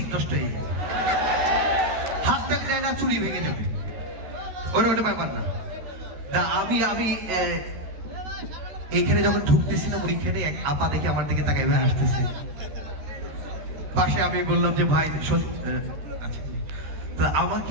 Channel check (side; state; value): left; late; 13 ms